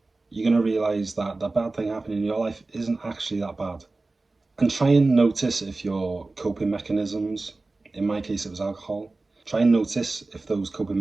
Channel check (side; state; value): left; quieter; 3.3 dB